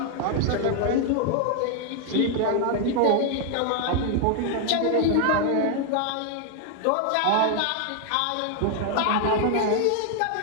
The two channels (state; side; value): different; both; correlation 0.00